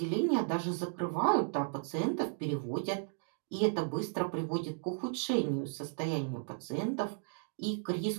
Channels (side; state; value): left; silent; digital silence